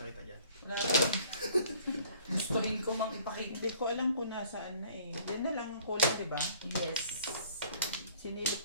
dyan. wala akong. Gustuhin ko mang ipakita. Hindi ko alam kung nasaan na eh. Diyan na lang ang kulang, di ba? Yes.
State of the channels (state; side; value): inverted; both; correlation -0.55